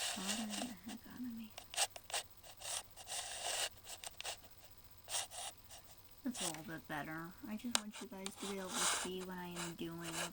bothering the heck out of me. That's a little bit better. I just want you guys to be able to see what I am doing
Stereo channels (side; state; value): both; identical; correlation 1.00